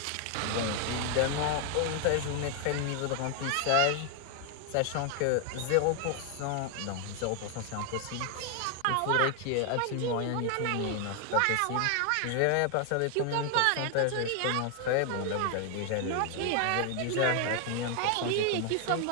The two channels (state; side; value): different; both; correlation 0.00